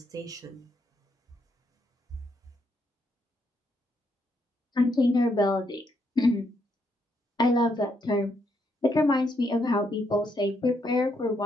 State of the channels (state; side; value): normal; both; correlation 0.76